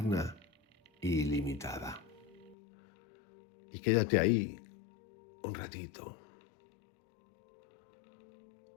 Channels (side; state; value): right; drops out; at 2.6 s